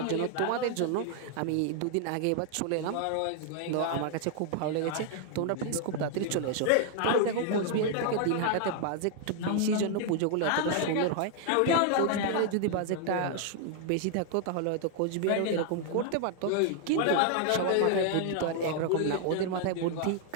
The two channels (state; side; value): different; both; correlation 0.00